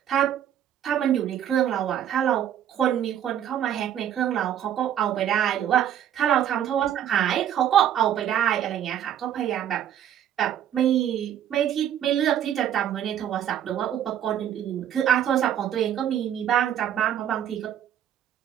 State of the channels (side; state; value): left; quieter; 10.3 dB